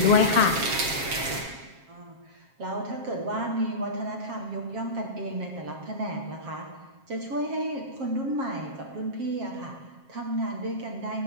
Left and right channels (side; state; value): left; late; 7.5 ms